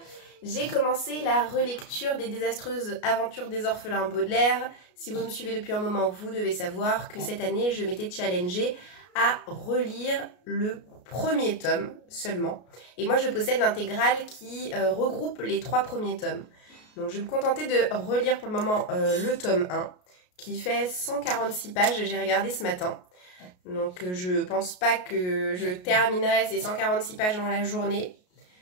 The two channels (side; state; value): right; late; 33 ms